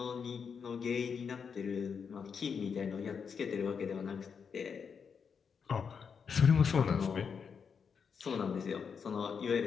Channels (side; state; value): right; quieter; 6.3 dB